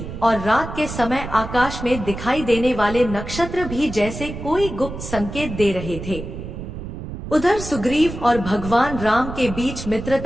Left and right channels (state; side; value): noise; right; rumble, 9 dB below the sound